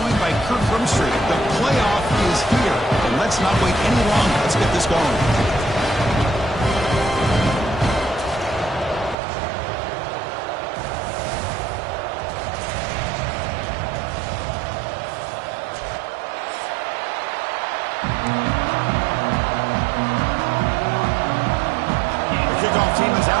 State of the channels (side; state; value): left; drops out; at 9.2 s